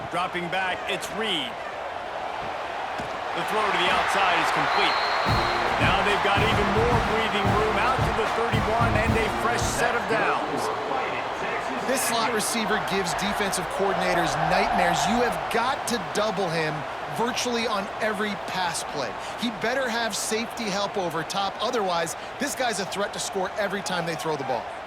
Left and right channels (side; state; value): both; identical; correlation 1.00